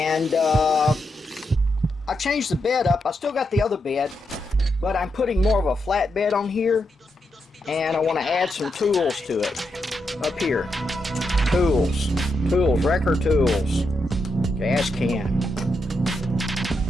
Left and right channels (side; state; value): both; normal; correlation 0.83